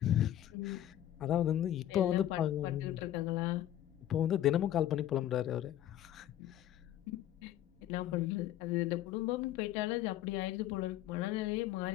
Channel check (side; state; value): right; quieter; 12.3 dB